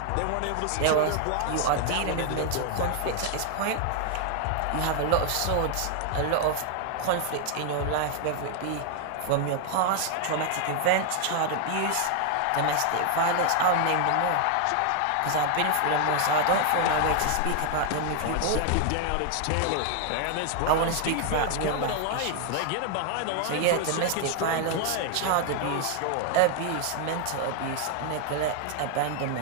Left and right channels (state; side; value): different; both; correlation 0.00